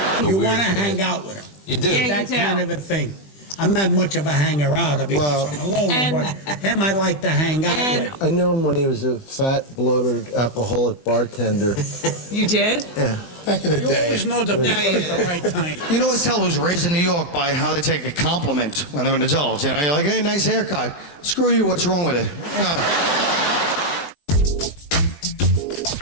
You want to hang out with him. You do. Yeah, That you do. kind of a thing. I'm not much of a hanger-outer because I'm alone, but him I like to hang out with. I knew him when he was a fat, bloated, alcoholic bartender. You did? Yeah, back in the You day. always know the people at the right time. You can always tell who's raised in New York by how they take a compliment when they're an adult. You know, you're like, hey, nice haircut. Screw you, what's wrong with it?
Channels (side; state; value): right; late; 20 ms